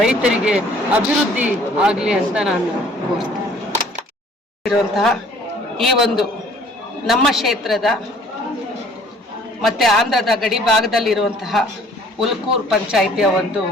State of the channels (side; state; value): both; normal; correlation 0.55